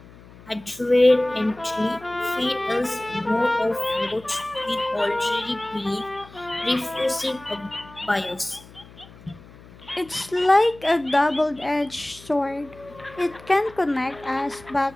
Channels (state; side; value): noise; left; hum, 21 dB below the sound